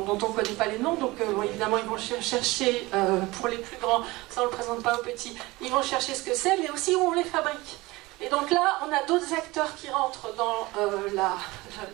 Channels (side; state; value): left; quieter; 21.2 dB